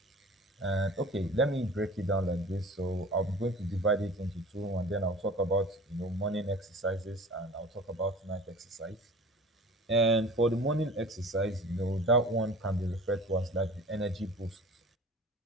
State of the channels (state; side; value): normal; both; correlation 0.42